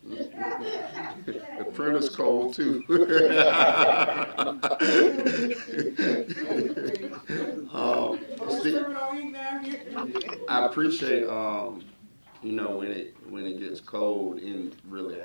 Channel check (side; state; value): both; inverted; correlation -1.00